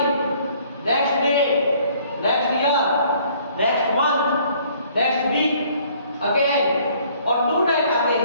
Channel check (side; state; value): both; inverted; correlation -0.59